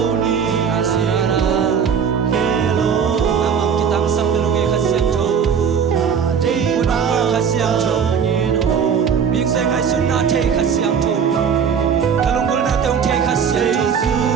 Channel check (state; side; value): quieter; left; 7.0 dB